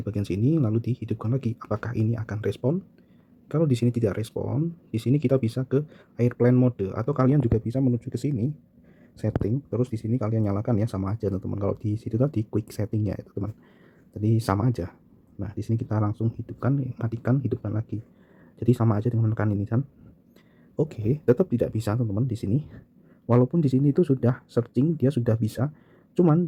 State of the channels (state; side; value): identical; both; correlation 1.00